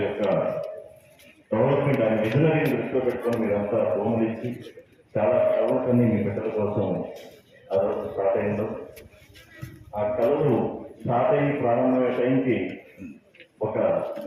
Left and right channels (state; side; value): identical; both; correlation 1.00